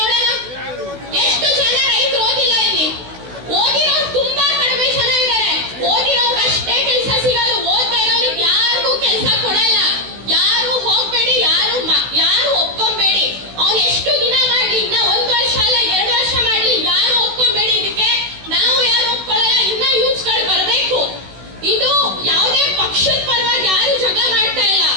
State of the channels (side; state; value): left; late; 16 ms